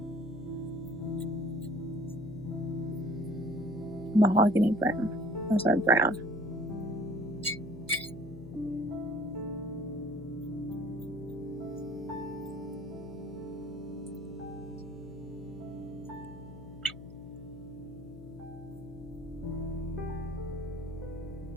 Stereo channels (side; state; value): left; noise; hum, 15 dB below the sound